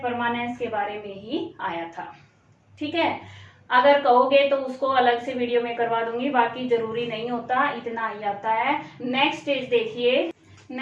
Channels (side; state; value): both; identical; correlation 1.00